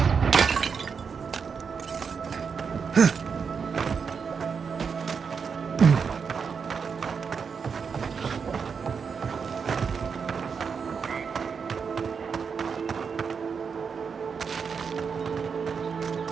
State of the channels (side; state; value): left; quieter; 6.0 dB